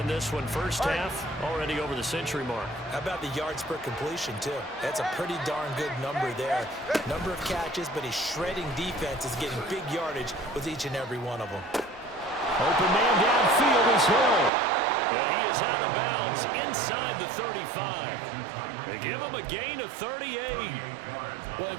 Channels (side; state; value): left; drops out; at 14.5 s